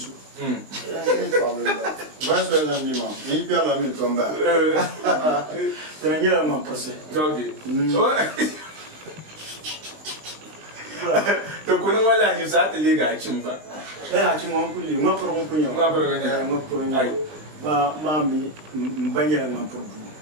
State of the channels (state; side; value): late; left; 20 ms